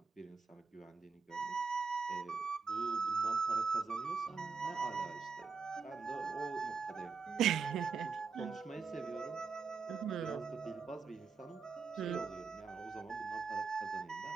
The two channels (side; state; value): left; quieter; 5.0 dB